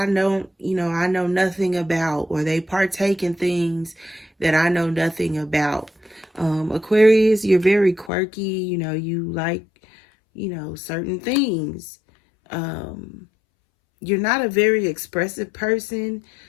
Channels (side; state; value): right; drops out; at 8.1 s